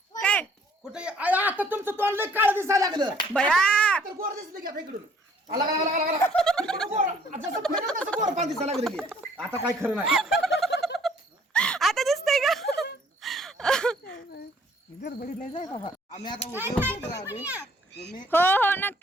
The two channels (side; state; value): both; normal; correlation 0.60